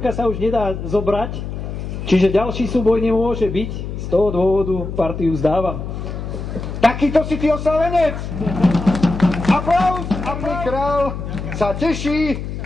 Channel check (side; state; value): left; noise; hum, 7 dB below the sound